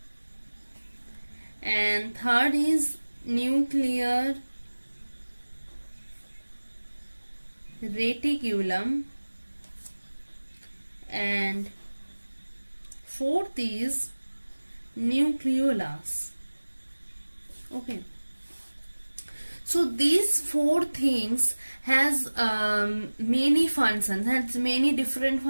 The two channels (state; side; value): inverted; both; correlation -1.00